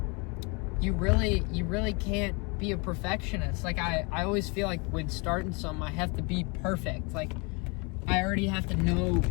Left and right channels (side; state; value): right; quieter; 30.8 dB